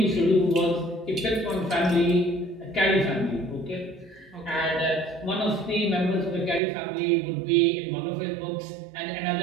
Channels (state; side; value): drops out; left; at 6.6 s